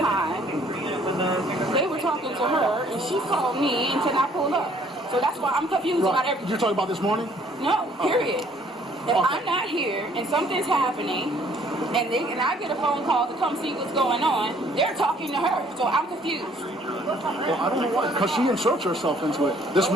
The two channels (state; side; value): normal; both; correlation 0.60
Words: they were talking to her and she called me and said I pulled up. So that's why I'm confused about everything. You're talking about this morning? No, period. If I'm not here and something's happening and I get a phone call to come see what's going on, they're talking to her. So I'm confused. Well, I don't know why, because she inserts herself into it. This